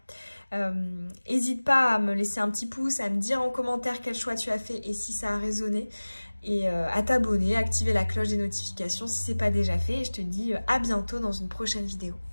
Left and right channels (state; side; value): inverted; both; correlation -1.00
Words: N'hésite pas à me laisser un petit pouce, à me dire en commentaire quel choix tu as fait et si ça a résonné. Et à t'abonner, activer la cloche des notifications si ce n'est pas déjà fait. Et je te dis à bientôt dans une prochaine vidéo.